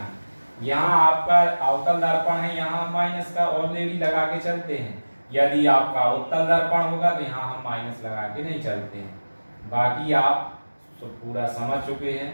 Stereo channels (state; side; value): inverted; both; correlation -1.00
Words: यहाँ आपका अवतल दर्पण है, यहाँ माइनस का ऑलरेडी लगा के चलते हैं। यदि आपका उत्तल दर्पण होगा तो यहाँ हम माइनस लगा के नहीं चलते हैं। बाकी आप तो पूरा समझ चुके हैं।